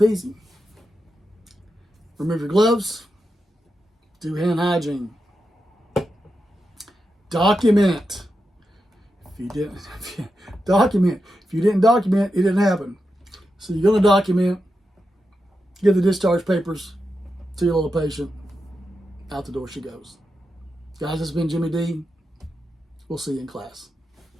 Remove your gloves. Do hand hygiene. Document. If you didn't document, it didn't happen. So you're going to document. Give the discharge papers to your little patient. Out the door she goes. Guys, this has been Jimmy D. We'll see you in class.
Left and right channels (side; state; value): both; normal; correlation 0.88